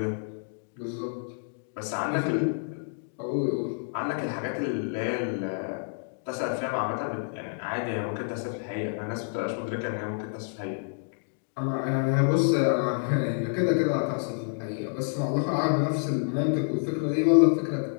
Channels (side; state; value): right; silent; digital silence